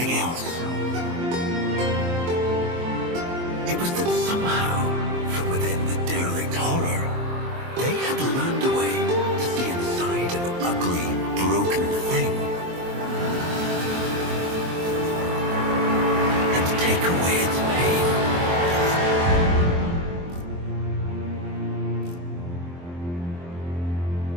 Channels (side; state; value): left; late; 23 ms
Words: else. It was that somehow, from within the derelict horror, they had learned a way to see inside an ugly, broken thing. And to take away its pain.